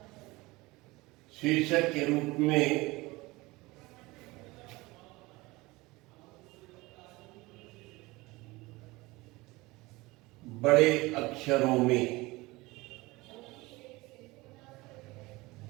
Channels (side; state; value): left; quieter; 21.8 dB